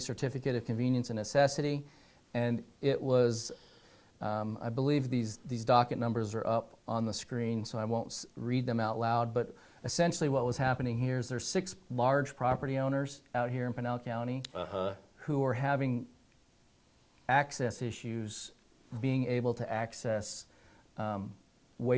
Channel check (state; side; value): identical; both; correlation 1.00